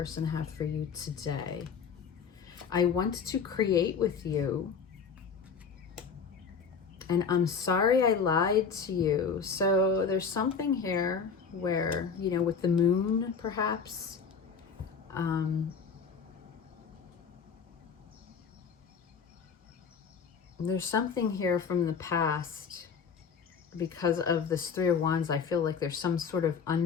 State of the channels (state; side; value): quieter; right; 6.0 dB